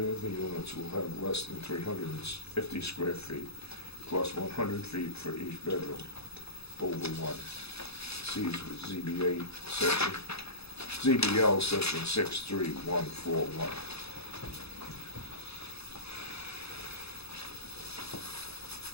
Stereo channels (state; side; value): late; right; 0.79 ms